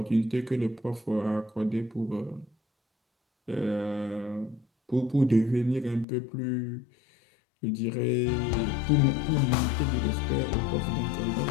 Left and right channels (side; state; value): right; drops out; at 6.1 s